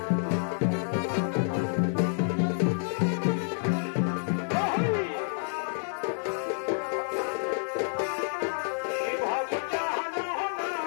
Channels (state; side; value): silent; right; digital silence